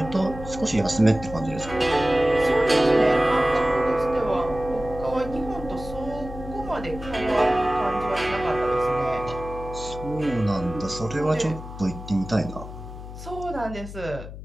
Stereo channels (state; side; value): noise; left; hum, 12 dB below the sound